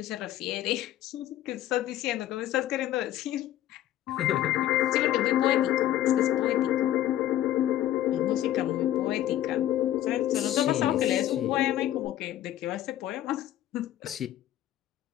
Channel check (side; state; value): right; quieter; 12.9 dB